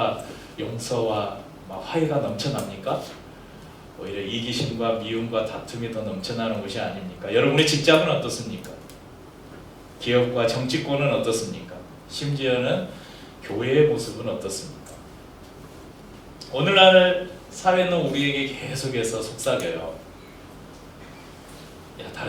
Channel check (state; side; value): identical; both; correlation 1.00